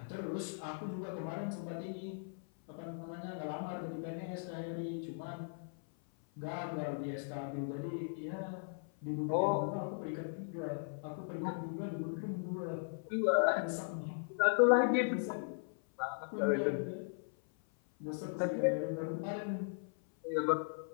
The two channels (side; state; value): right; silent; 52 dB below the other